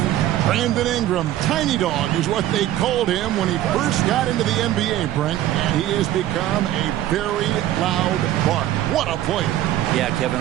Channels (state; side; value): quieter; left; 13.3 dB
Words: Brandon Ingram, Tiny Dog is what they called him when he first got into the NBA, Brent. And he has become a very loud bark. What a player. Yeah, Kevin,